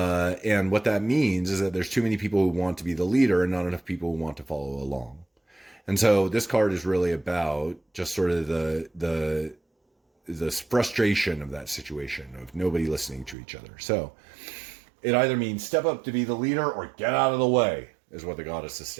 what that means is that there's too many people who want to be the leader and not enough people who want to follow along. And so this card is really about just sort of the frustration of that situation of nobody listening to each other. So it either means step up to be the leader or get out of the way, is what the Goddess is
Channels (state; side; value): drops out; left; at 13.4 s